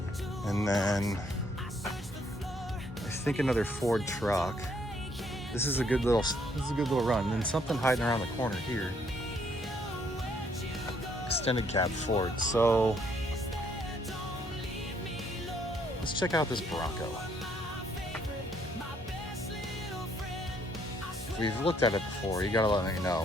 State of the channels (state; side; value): normal; both; correlation 0.68